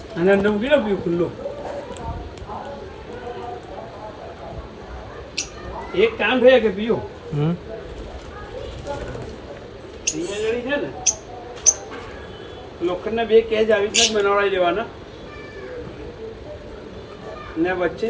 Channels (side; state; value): both; identical; correlation 1.00